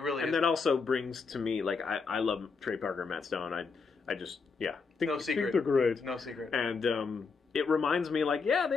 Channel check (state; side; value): quieter; right; 4.8 dB